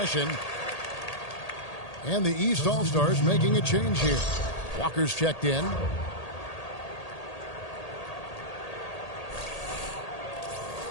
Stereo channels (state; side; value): late; right; 1.8 ms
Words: And the East All-Stars making a change here. Walker's checked in.